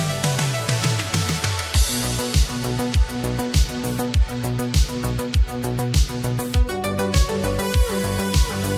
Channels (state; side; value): identical; both; correlation 1.00